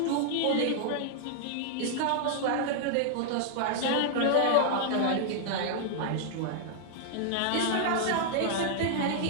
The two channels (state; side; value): different; both; correlation -0.01